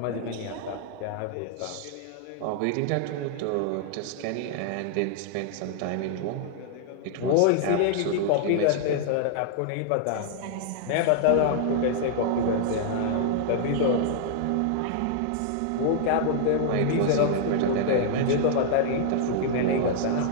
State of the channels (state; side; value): different; both; correlation -0.01